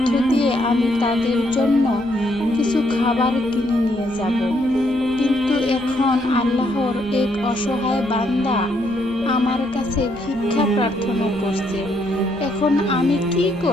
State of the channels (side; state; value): both; normal; correlation 0.73